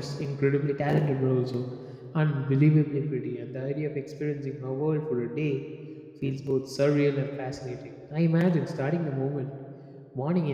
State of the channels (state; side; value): identical; both; correlation 1.00